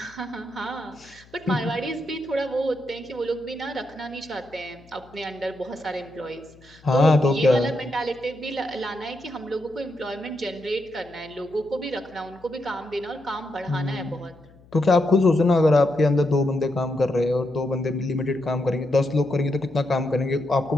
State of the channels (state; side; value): noise; left; hum, 26 dB below the sound